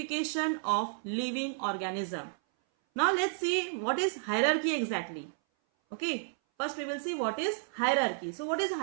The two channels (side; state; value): left; silent; 57 dB below the other